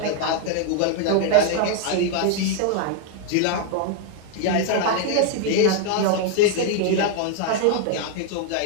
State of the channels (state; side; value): different; both; correlation 0.00